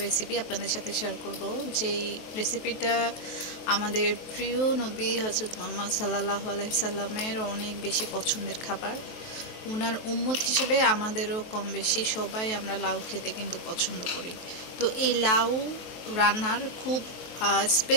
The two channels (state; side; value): late; right; 23 ms